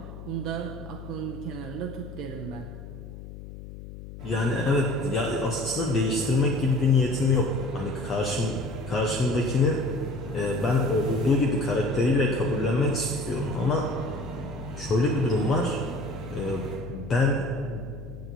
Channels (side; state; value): left; noise; hum, 13 dB below the sound